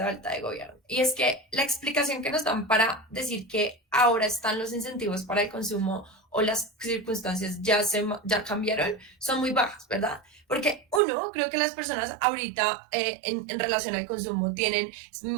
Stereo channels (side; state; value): left; drops out; at 11.0 s